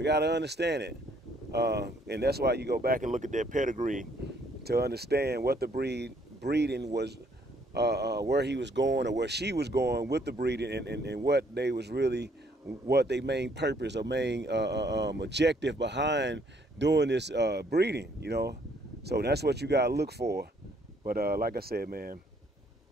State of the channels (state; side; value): normal; both; correlation 0.66